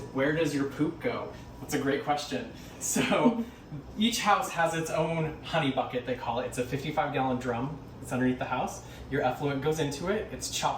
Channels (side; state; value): both; identical; correlation 1.00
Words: where does your poop go? That's a great question. So each house has its own honey bucket, they call it. It's a 55-gallon drum. It's underneath the house. Your effluent goes into it. It's